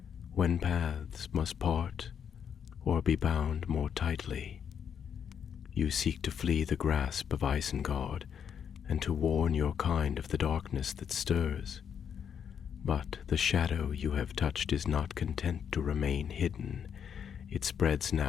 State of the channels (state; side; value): quieter; right; 7.8 dB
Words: "when paths must part or be bound more tightly. You seek to flee the grasp of Isengard and to warn your kind of the darkness that stirs. But the shadow you have touched is not content to remain hidden. It spreads